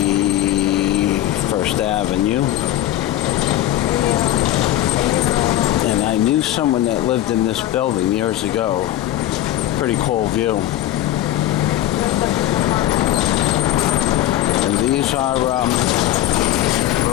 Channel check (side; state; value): right; quieter; 13.3 dB